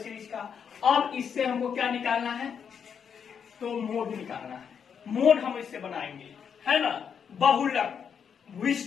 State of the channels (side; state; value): right; quieter; 7.2 dB